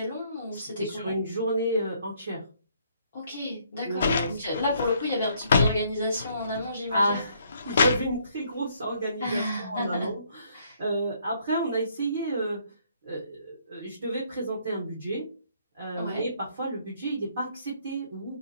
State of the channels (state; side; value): inverted; both; correlation -0.67